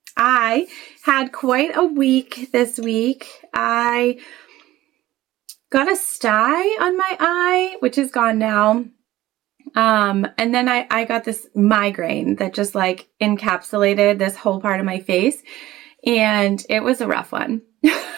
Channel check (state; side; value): quieter; left; 15.8 dB